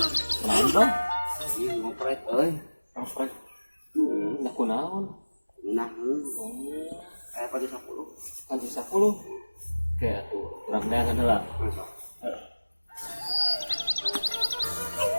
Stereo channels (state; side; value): inverted; both; correlation -1.00